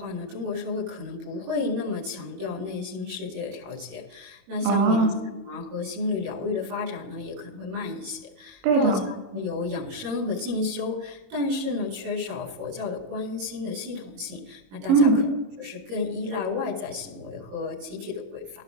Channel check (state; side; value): late; left; 22 ms